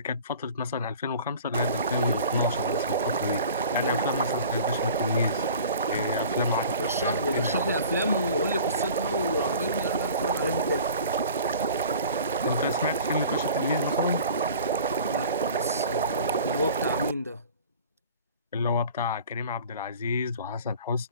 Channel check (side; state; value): both; inverted; correlation -0.44